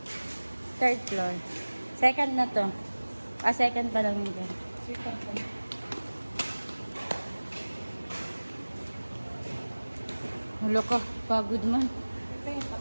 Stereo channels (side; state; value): both; inverted; correlation -1.00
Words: Third floor. Second na to. Second pa lang yun. Second pa. Hulo ko, pagod man. Ito yung